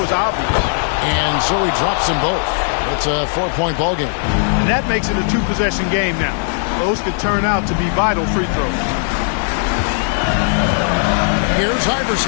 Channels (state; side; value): silent; right; digital silence